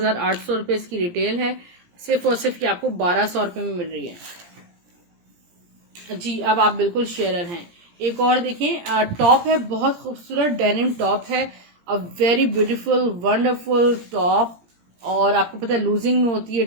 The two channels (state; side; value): late; left; 17 ms